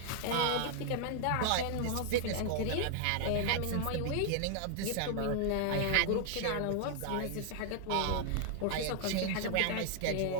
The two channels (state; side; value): different; both; correlation 0.00